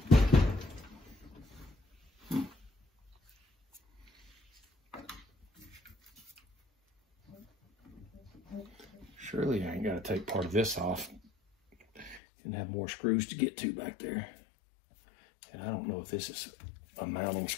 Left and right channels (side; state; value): right; drops out; at 12.2 s